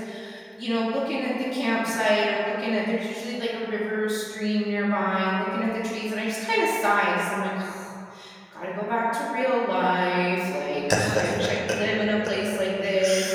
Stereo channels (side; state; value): both; identical; correlation 1.00